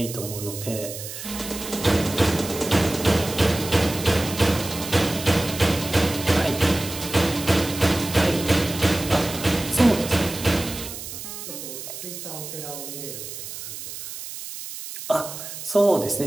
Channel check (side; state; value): right; noise; hiss, 10 dB below the sound